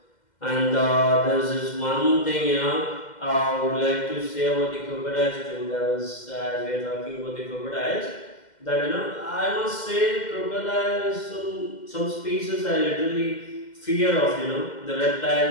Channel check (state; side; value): late; right; 2.1 ms